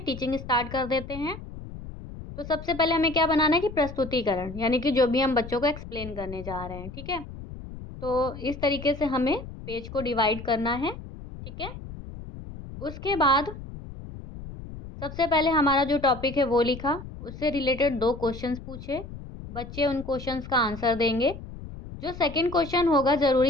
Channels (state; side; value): noise; left; rumble, 12 dB below the sound